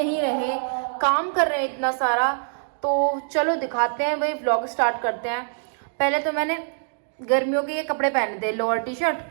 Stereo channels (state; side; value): silent; left; digital silence